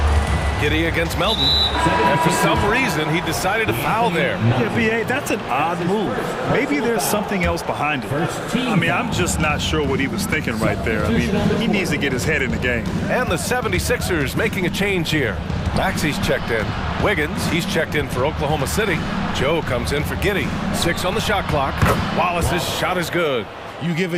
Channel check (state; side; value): identical; both; correlation 1.00